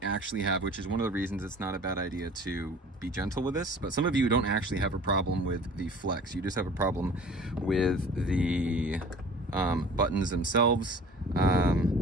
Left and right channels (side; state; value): both; normal; correlation 0.45